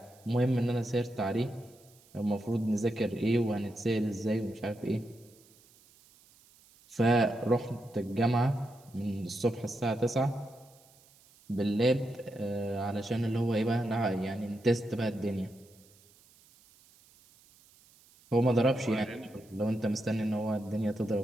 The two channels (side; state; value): right; noise; hiss, 28 dB below the sound